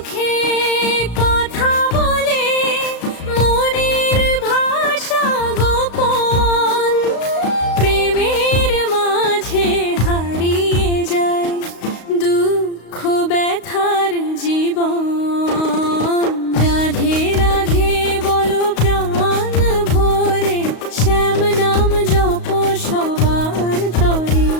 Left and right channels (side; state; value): right; late; 35 ms